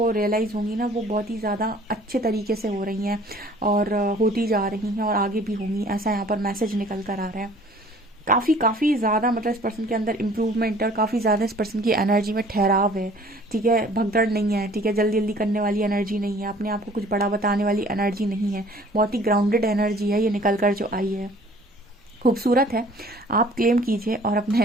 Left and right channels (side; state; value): both; normal; correlation 0.52